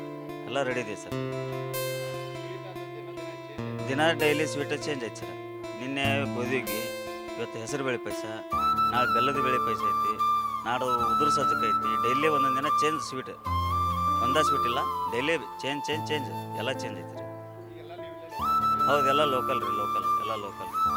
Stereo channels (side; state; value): both; identical; correlation 1.00